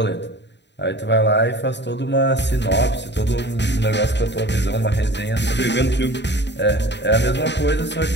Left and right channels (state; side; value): late; right; 0.51 ms